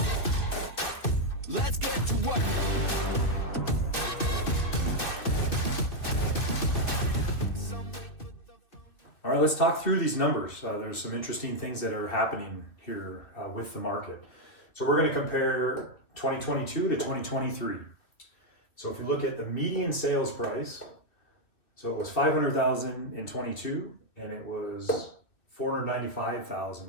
Let's get to work. All right, let's talk through these numbers. There's some interesting things that are happening here with the market. So we're going to compare 2022 to 2023. So if you look at the median sales price, so it was $500,000 in 22 and it was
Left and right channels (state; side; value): late; right; 2.6 ms